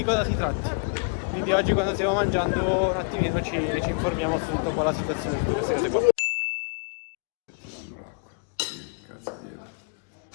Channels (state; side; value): quieter; right; 39.7 dB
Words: cosa si tratta. Quindi oggi quando stiamo mangiando un attimino ci informiamo su tutta qua la situazione, su tutte queste cose qua. Cazzo